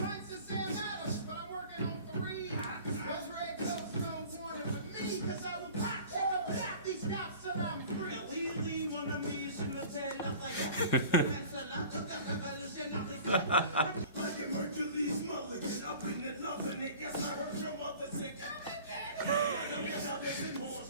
of Sam Adams, but I'm working on 3. Those red coats don't want it with me, cause I will pop, check up that these cops till I'm free. Oui, mon ami, je m'appelle Lafayette. Like it Hercules Mulligan, up in it, loving it. Yes, I heard your mother say, come and get it. Like I'm brothers and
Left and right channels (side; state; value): both; inverted; correlation -0.43